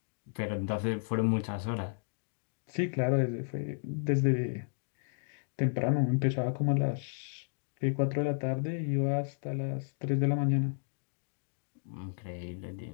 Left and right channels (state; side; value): silent; right; digital silence